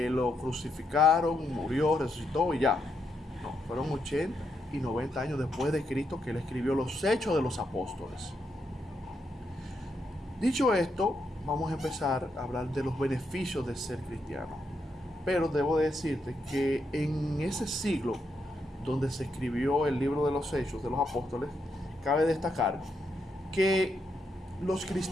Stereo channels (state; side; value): normal; both; correlation 0.80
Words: crucificaron, murió, resucitó y ya. No, fueron 80 y 90 años después de Cristo que él escribió los Hechos de los Apóstoles. Dicho esto, vamos a empezar a hablar de los beneficios de ser cristiano. Pero debo decirte que en ese siglo donde se escribió el libro de los Hechos de los Apóstoles, cabe destacar que los